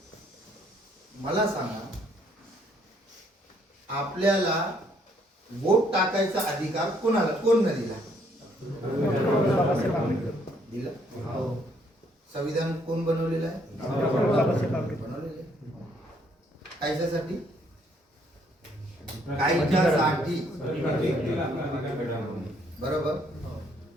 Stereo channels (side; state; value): both; normal; correlation 0.67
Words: मला सांगा, आपल्याला वोट टाकायचा अधिकार कोणाला, कोण न दिला? दिला. संविधान कोण बनवलेलं आहे? बनवलेलं आहे. कायच्यासाठी? कायच्यासाठी, बरोबर.